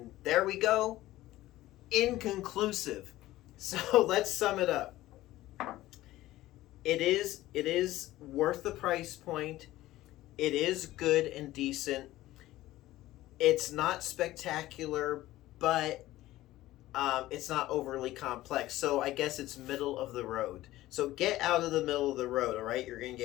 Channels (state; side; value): quieter; right; 16.1 dB